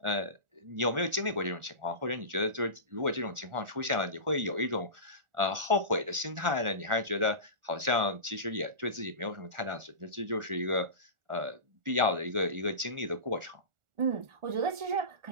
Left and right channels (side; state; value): left; late; 1.4 ms